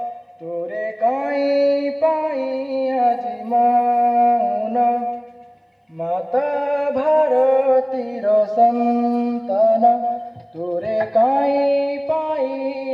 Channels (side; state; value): both; identical; correlation 1.00